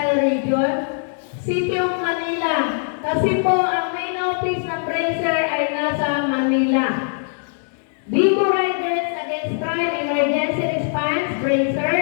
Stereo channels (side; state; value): right; silent; digital silence